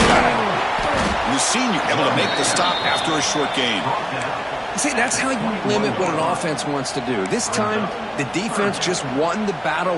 back. And the senior able to make the stop after a short gain. See, that's how you limit what an offense wants to do. This time, the defense just won the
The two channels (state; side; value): identical; both; correlation 1.00